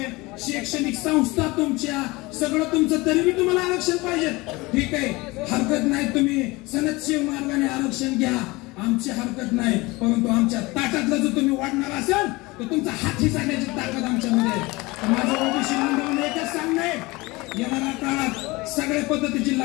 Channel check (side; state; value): right; quieter; 22.7 dB